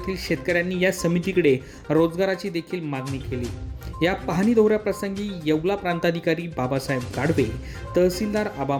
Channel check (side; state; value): both; identical; correlation 1.00